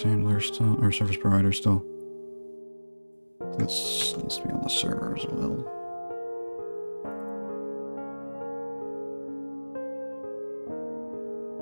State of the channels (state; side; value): inverted; both; correlation -1.00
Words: handler still, or service provider still. This needs to be on the server as well.